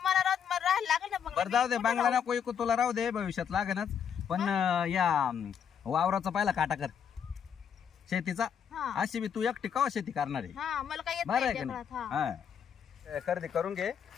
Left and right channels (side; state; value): right; quieter; 7.9 dB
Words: मला राहायला लागेल ना बरं बंगला जाऊ दे बंगला नको ऐकू तुला राहू दे भविष्यात लागेनच पण या वावराचा पहिला काटा कर शेतीचा हा अशी बी तू एकटी का शेती करणार आहे हा मला काय येत बरं नाही आहे का जगात, नाही हा खरेदी करून घे